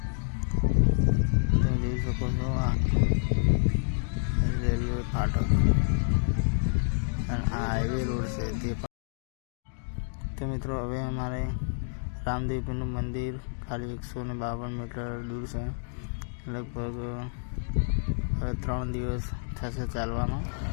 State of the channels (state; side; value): silent; right; digital silence